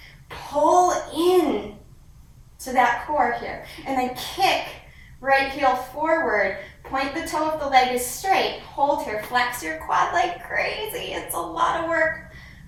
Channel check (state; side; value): identical; both; correlation 1.00